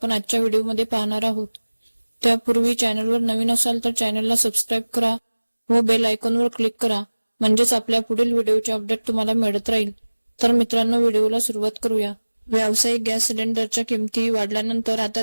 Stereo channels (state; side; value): inverted; both; correlation -1.00